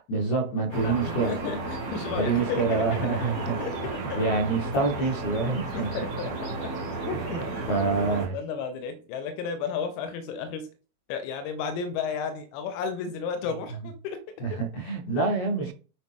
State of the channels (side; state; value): right; late; 23 ms